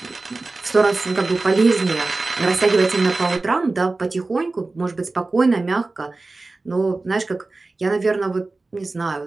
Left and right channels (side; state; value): left; quieter; 3.4 dB